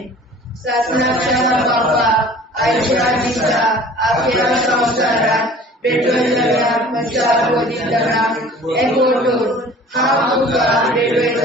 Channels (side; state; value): both; normal; correlation 0.46